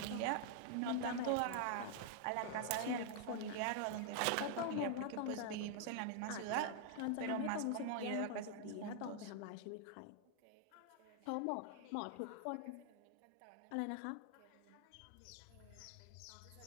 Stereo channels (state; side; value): different; both; correlation -0.01